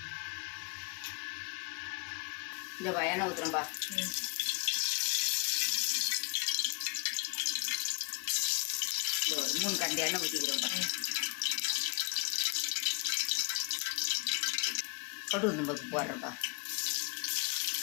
இந்த எண்ணெய் ஊற்றுறோம்ப்பா. ஒரு 3 கரண்டி எண்ணெய் ஊற்றிக்கிறோம்ப்பா. கடுகு உளுந்தம்பருப்பு போடுறேன்ப்பா.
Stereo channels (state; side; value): quieter; right; 34.9 dB